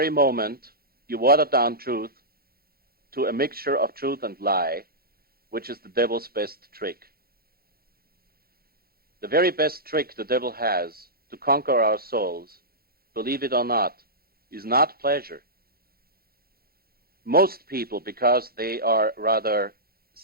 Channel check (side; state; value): left; late; 0.44 ms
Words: moment you water down truth to a mixture of truth and lie, which is the devil's best trick. The very best trick the devil has to conquer our souls, believe it or not, is not pleasure. Most people, because they are rather